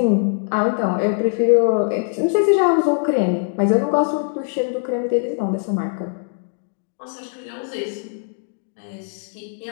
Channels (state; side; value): silent; right; 65 dB below the other